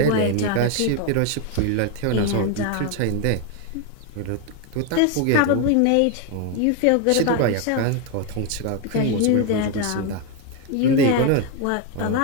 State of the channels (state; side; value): different; both; correlation 0.01